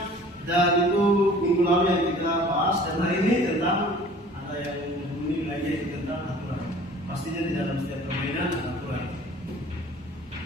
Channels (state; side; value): normal; both; correlation 0.49